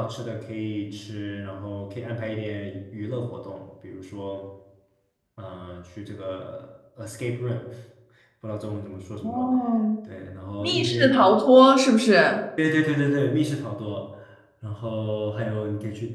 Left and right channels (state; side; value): identical; both; correlation 1.00